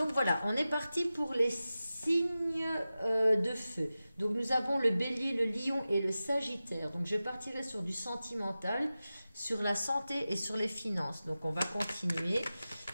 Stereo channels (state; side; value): inverted; both; correlation -0.94